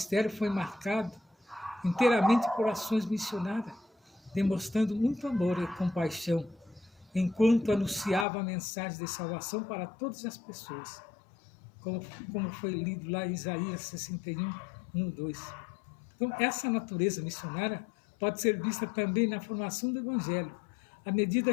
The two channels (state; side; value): drops out; right; at 8.2 s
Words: foi marcado inteiramente por ações missionárias, demonstrando muito amor e compaixão, enquanto anunciava a mensagem de salvação para todas as pessoas, como foi lido lá em Isaías 61, 1, 2. Então, essa natureza missionária pode ser vista também na formação do Evangelho, à